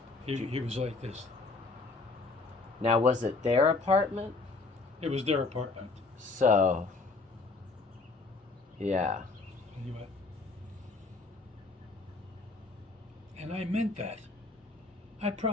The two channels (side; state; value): right; quieter; 3.7 dB